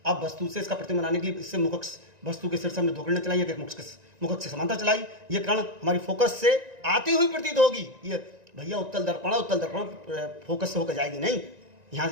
अब वस्तु से इसका प्रतिबिंब बनाने के लिए इससे मुख वस्तु के सिर से हमने 2 किरणें चलाई, एक मुख से समांतर चलाई, ये किरण हमारी फोकस से आती हुई प्रतीत होगी। ये भैया उत्तल दर्पण फोकस से होकर जाएगी नहीं,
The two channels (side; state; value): left; late; 1.9 ms